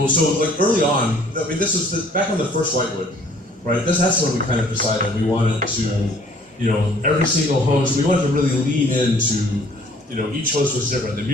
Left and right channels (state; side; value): normal; both; correlation 0.57